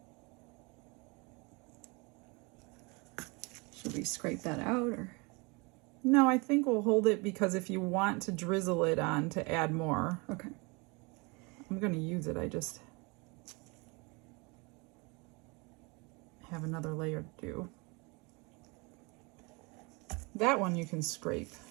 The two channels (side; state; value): left; quieter; 28.5 dB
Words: Should we scrape that out or? No, I think we'll hold it because if you want to drizzle it on to add more, Okay. I'm going to use it. I just have another layer to do. That one you can scrape.